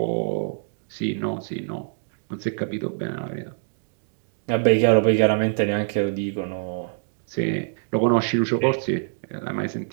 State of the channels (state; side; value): silent; left; digital silence